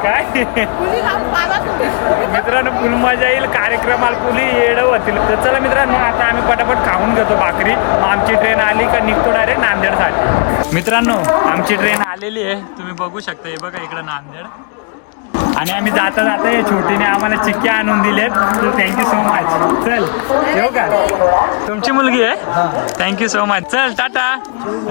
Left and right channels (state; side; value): quieter; right; 39.1 dB